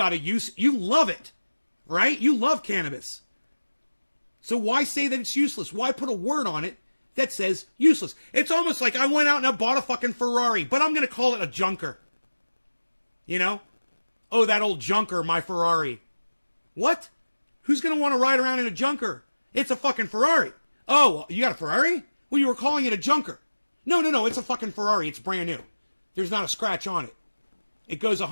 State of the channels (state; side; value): inverted; both; correlation -1.00